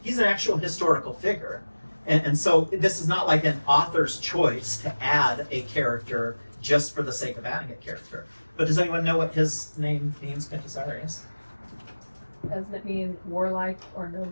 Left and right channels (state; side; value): inverted; both; correlation -1.00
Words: he's an actual historical figure. And so this is not like an author's choice to add a character just for the sake of adding a character. But does anyone know what his name means, Quintus Arius? Doesn't it mean warlike or